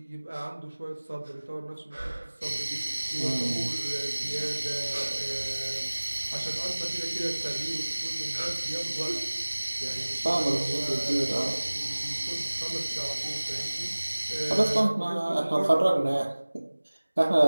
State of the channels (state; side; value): inverted; both; correlation -1.00